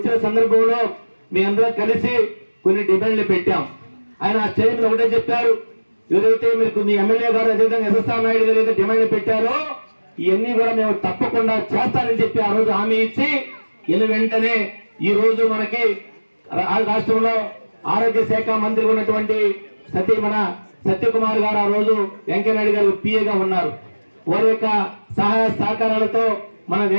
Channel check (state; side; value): inverted; both; correlation -1.00